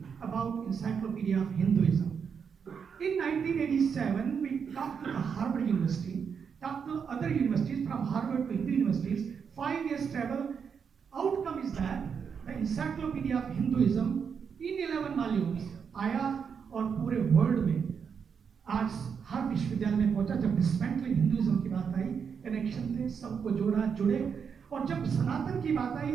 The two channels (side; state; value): left; quieter; 6.6 dB